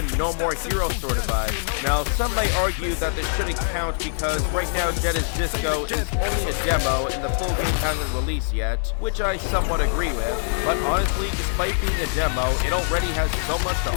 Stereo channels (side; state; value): right; silent; digital silence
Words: No More Hero sort of vibe. Now, some might argue that this shouldn't count because right now Dead as Disco is only a demo and the full game hasn't released yet, which I somewhat agree with, but honestly, despite being a demo, it already has so much to